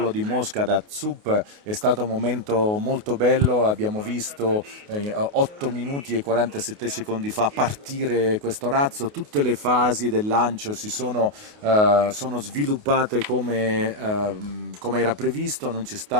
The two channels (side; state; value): left; late; 28 ms